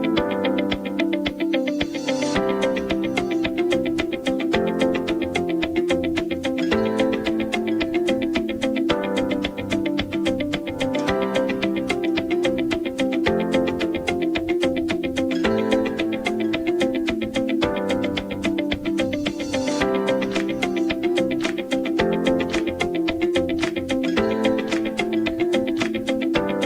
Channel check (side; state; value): both; identical; correlation 1.00